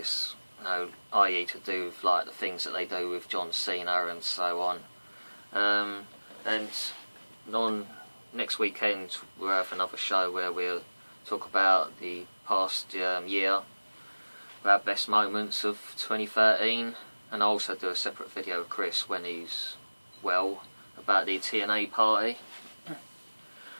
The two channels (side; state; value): both; inverted; correlation -1.00